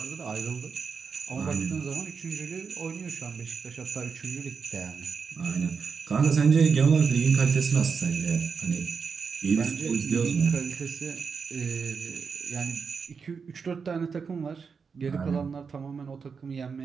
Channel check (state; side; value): quieter; left; 5.7 dB